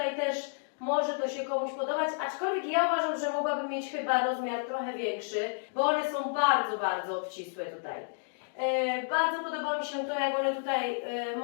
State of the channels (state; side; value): silent; right; digital silence